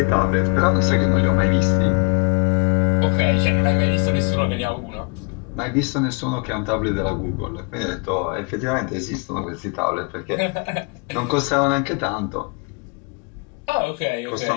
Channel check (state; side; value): quieter; right; 33.4 dB